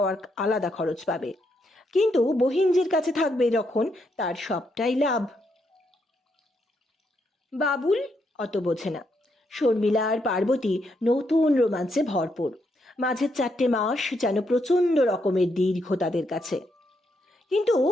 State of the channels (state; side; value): normal; both; correlation 0.78